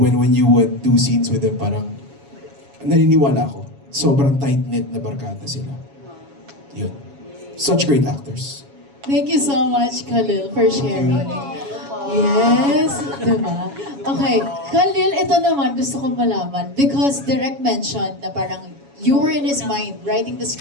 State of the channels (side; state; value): left; late; 7.2 ms